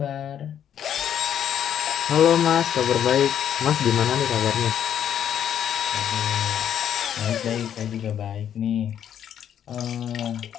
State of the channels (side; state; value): right; quieter; 9.5 dB